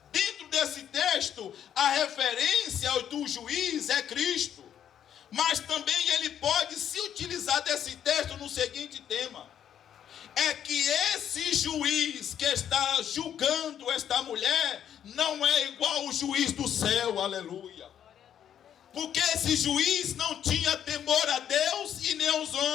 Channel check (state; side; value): quieter; right; 9.6 dB